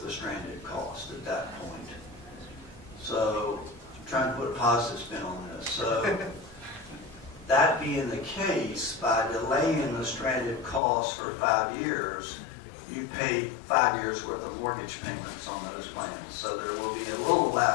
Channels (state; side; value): drops out; right; at 10.8 s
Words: the stranded cost at that point. So I'm trying to put a positive spin on this. So that being the case, by delaying the stranded costs for 5 years, you pay 5 years worth of mortgage payments on those plans. So there will be a little